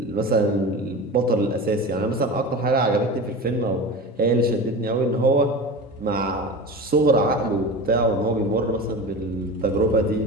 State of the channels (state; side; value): normal; both; correlation 0.31